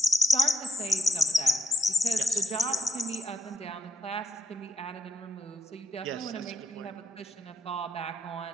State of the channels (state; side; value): normal; both; correlation 0.76